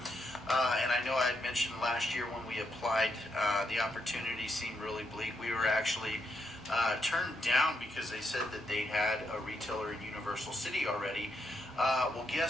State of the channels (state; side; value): normal; both; correlation 0.80